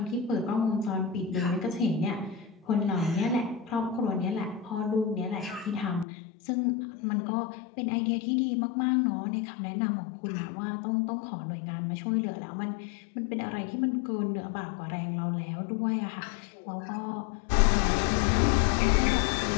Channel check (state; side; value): drops out; right; at 6.1 s